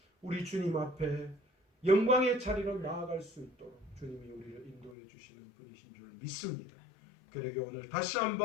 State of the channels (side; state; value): right; drops out; at 5.0 s